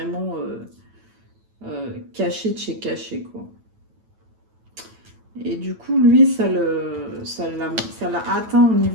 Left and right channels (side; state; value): left; late; 9.1 ms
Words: caché de chez caché, quoi. Et du coup, lui, ça l'a atteint au